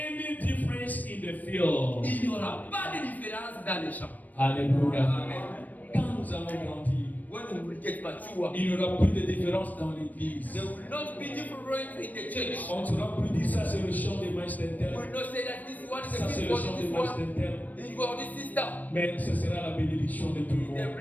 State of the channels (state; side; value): late; right; 0.081 ms